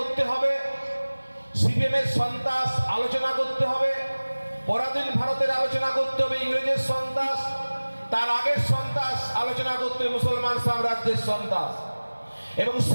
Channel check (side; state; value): both; inverted; correlation -1.00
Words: হবে, সিপিএমের সন্ত্রাস আলোচনা করতে হবে, পরাধীন ভারতের আলোচনা করতে হবে, ইংরেজের সন্ত্রাস, তার আগের সন্ত্রাস আলোচনা করতে হবে, মুসলমান সাম্রাজ্যের সন্ত্রাস। এবং